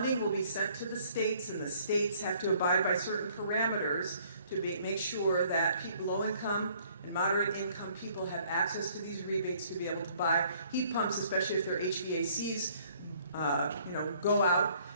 will be sent to the states, and the states have to abide by certain parameters to make sure that people, low income and moderate income people, have access to these rebates to be able to buy heat pumps, especially if their HVACs go out.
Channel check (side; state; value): both; inverted; correlation -0.61